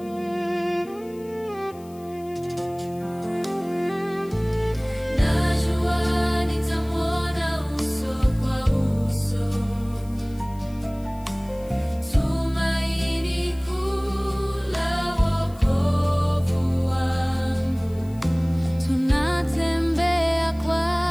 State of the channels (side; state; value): left; noise; hiss, 26 dB below the sound